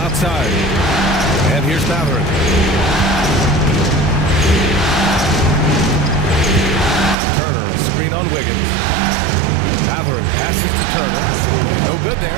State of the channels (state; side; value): drops out; left; at 7.2 s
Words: outside. And here's Matherin. Turner, a screen on Wiggins. Matherin passes to Turner. No good